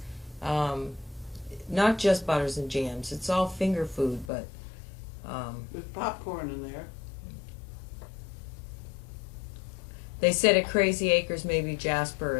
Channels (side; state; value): right; drops out; at 4.3 s